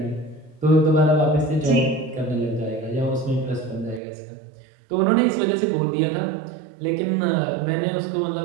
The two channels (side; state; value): left; drops out; at 4.0 s